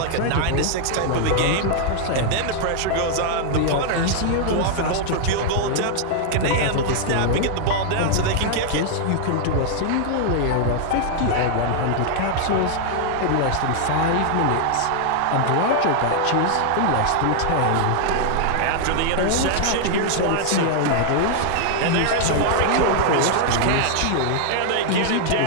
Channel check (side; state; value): both; different; correlation -0.01